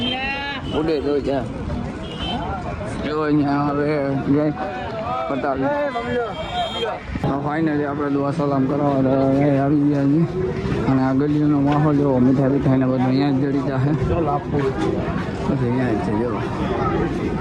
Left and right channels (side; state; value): both; identical; correlation 1.00